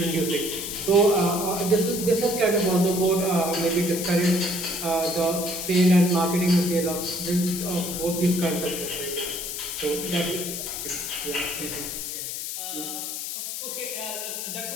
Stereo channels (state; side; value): noise; left; hiss, 5 dB below the sound